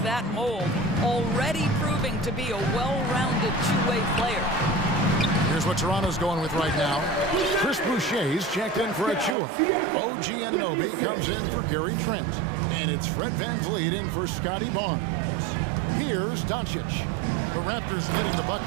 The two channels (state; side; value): drops out; left; at 9.3 s